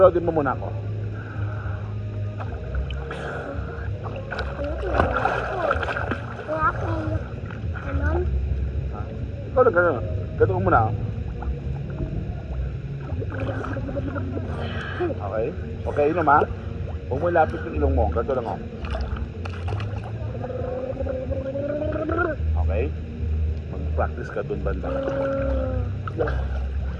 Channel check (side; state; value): both; identical; correlation 1.00